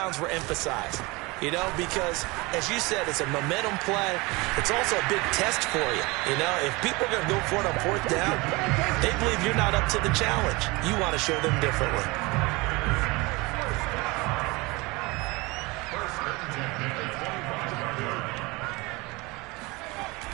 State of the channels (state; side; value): quieter; left; 24.3 dB